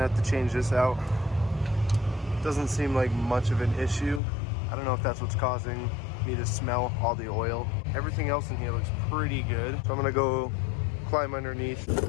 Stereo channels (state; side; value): drops out; right; at 4.2 s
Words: have to change this out. Doesn't seem like much of an issue. I don't know if that's what's causing me to smell all the oil. Everything else in here looks pretty good. So I'm gonna go climb underneath.